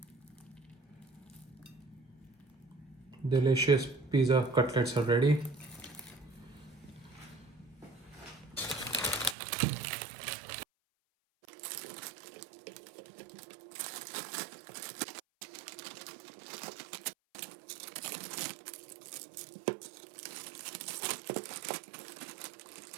Delicious pizza cutlets are ready.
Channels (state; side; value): drops out; left; at 9.3 s